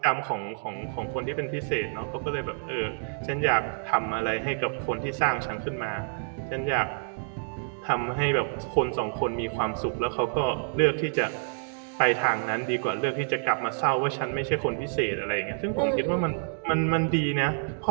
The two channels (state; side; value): silent; left; 59 dB below the other